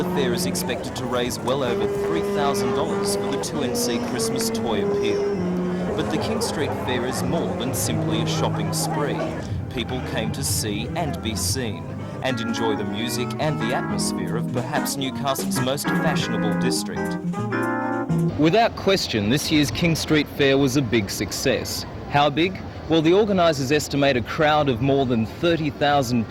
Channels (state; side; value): identical; both; correlation 1.00